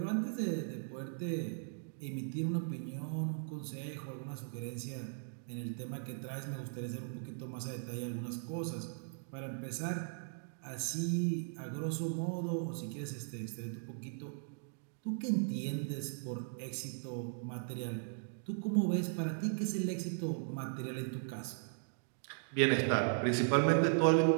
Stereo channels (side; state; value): left; silent; digital silence